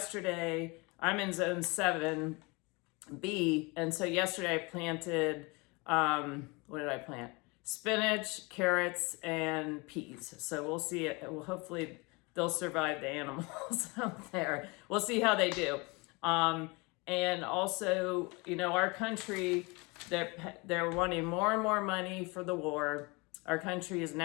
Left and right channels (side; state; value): right; quieter; 27.1 dB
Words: I'm in zone 7B, and so yesterday I planted, what did I plant? Spinach, carrots, and peas. So we'll see it. Well, hopefully they'll survive the animals out there. We'll see how they do. And also, our country, they're wanting more and more money for the war. Our country is